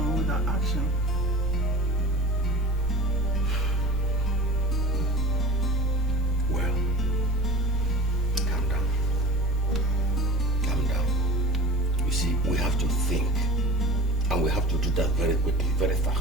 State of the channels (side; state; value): right; noise; hiss, 29 dB below the sound